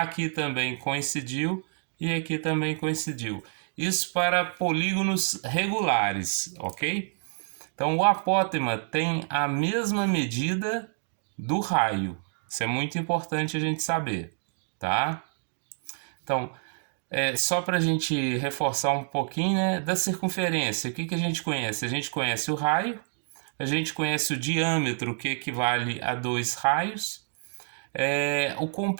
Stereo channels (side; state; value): left; silent; digital silence